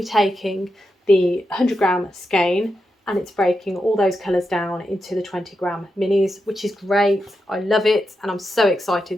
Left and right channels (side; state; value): both; normal; correlation 0.87